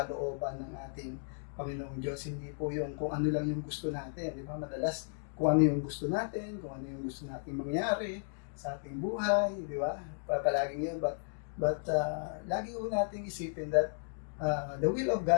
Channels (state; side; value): silent; right; digital silence